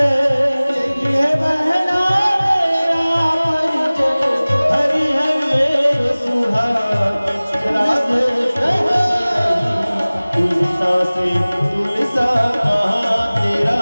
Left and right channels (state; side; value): inverted; both; correlation -0.99